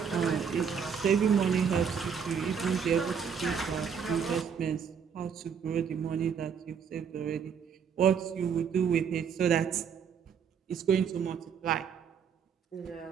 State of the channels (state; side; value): quieter; left; 7.0 dB